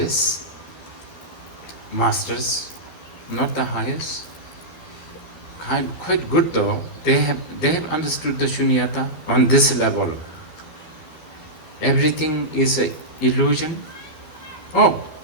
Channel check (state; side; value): late; right; 13 ms